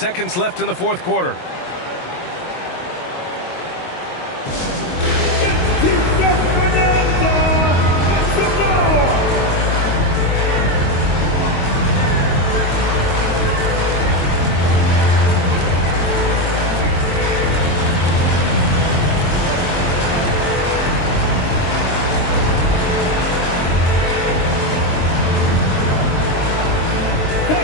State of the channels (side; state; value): right; late; 22 ms